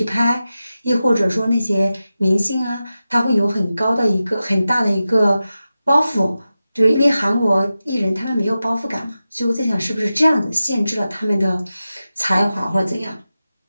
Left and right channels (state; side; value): inverted; both; correlation -0.93